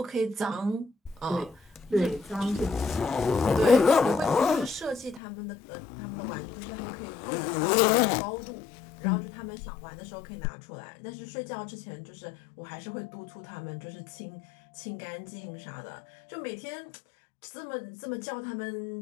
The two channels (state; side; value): drops out; right; at 5.2 s